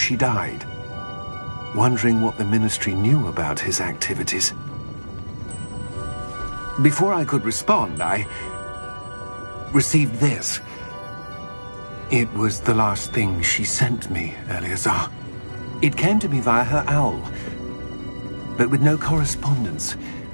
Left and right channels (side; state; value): both; inverted; correlation -1.00